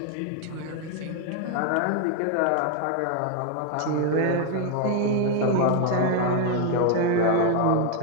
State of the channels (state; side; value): different; both; correlation 0.01